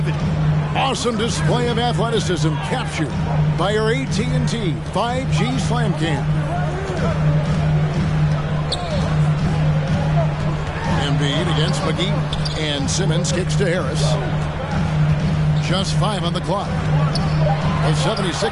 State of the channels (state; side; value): identical; both; correlation 1.00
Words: Awesome display of athleticism captured by our AT&T 5G Slam Cam. Embiid against McGee. And Simmons kicks to Harris. Just 5 on the clock. The